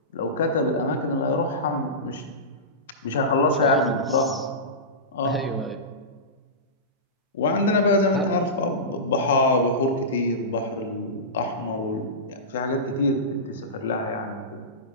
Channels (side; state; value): both; normal; correlation -0.18